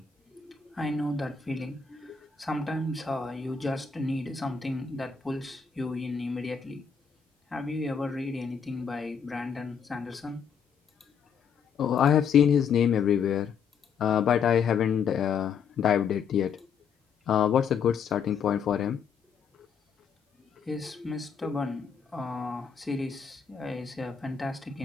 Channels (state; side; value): quieter; right; 6.7 dB